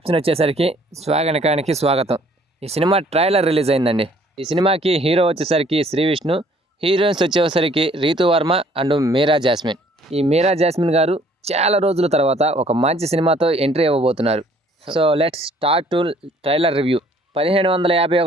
వచ్చేసరికి swag అనకానికి స్వాగతం. ఈ సినిమా ట్రైలర్ రిలీజ్ అయిందండి. ఈ సినిమాకి హీరో వచ్చేసరికి శ్రీ విష్ణు, హీరోయిన్స్ వచ్చేసరికి రీతు వర్మ అండ్ మీరా జాస్మిన్. ఈ మీరా జాస్మిన్ గారు చాలా రోజుల తర్వాత ఒక మంచి సినిమాతో ఎంట్రీ ఇవ్వబోతున్నారు. So let's start to trailer review.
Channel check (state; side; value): normal; both; correlation 0.59